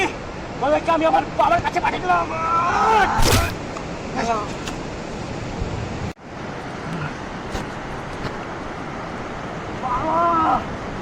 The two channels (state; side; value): identical; both; correlation 1.00